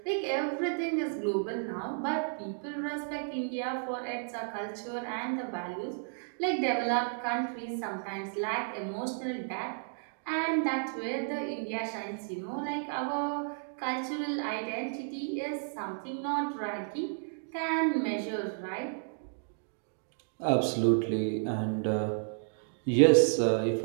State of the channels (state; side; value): silent; left; digital silence